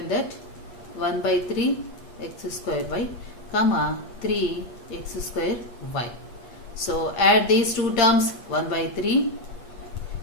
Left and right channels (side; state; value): right; late; 8.4 ms